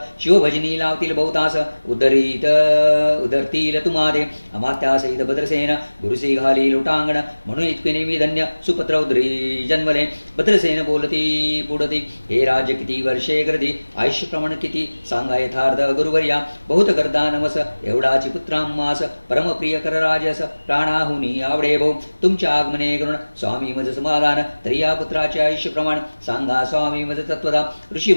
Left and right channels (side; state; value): both; inverted; correlation -1.00